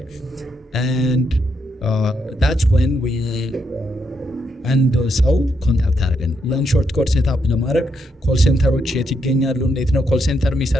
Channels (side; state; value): both; normal; correlation 0.79